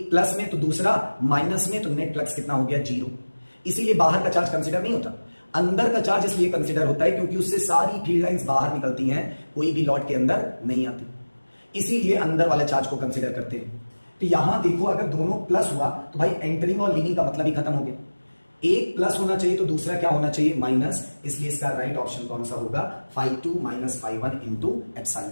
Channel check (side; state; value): both; inverted; correlation -1.00